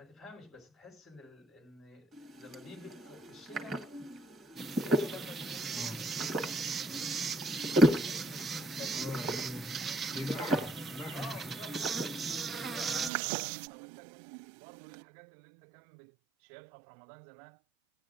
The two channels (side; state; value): left; drops out; at 13.1 s